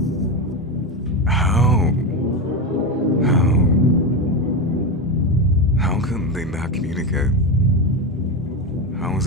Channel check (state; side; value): normal; both; correlation 0.15